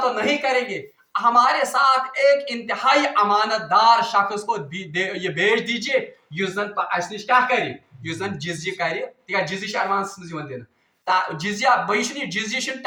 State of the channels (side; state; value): both; identical; correlation 1.00